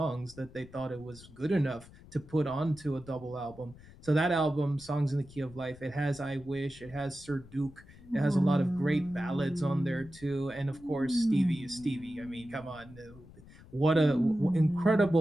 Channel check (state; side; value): noise; left; rumble, 20 dB below the sound